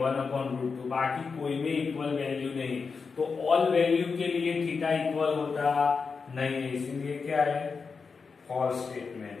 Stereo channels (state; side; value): quieter; right; 5.1 dB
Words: बाकी कोई में इक्वल वैल्यू नहीं। तो ऑल वैल्यू के लिए थीटा इक्वल होता नहीं है, इसीलिए क्या है, फॉल्स स्टेटमेंट है।